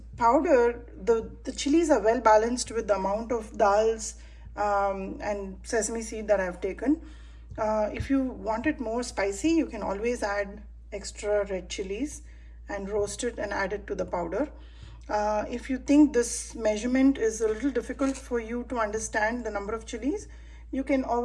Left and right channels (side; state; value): both; identical; correlation 1.00